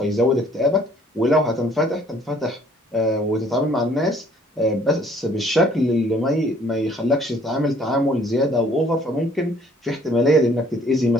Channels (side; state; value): both; normal; correlation 0.59